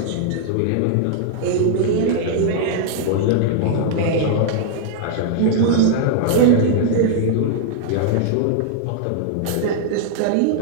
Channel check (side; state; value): both; different; correlation -0.01